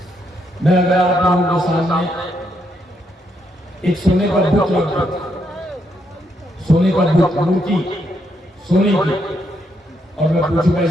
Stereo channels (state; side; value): normal; both; correlation 0.77